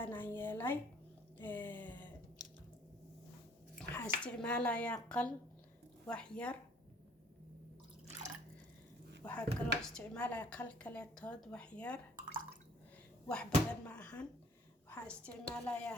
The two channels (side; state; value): both; normal; correlation 0.57